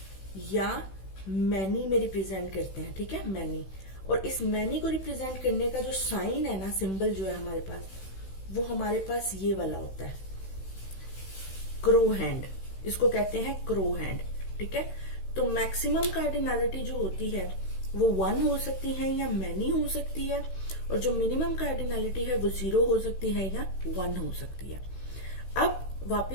या मैनी में रिप्रेजेंट करते हैं, ठीक है, मैनी। और इस मैनी को रिप्रेजेंट करने का जो साइन है ना, सिंबल जो है हमारे पास, वो हमारे पास ये वाला होता है, क्रो हैंड। इसको कहते हैं क्रो हैंड, ठीक है। तो मैक्सिमम कार्डिनैलिटी जो होती है वो 1 हो सकती है या मैनी हो सकती है, और जो मिनिमम कार्डिनैलिटी है वो 0 हो सकती है या 1 हो सकती है। अब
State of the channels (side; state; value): right; late; 16 ms